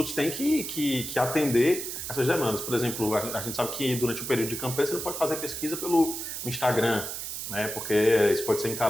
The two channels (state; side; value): noise; right; hiss, 6 dB below the sound